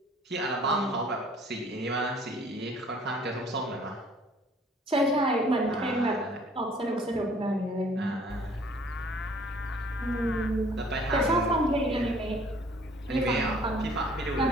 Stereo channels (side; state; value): both; normal; correlation 0.56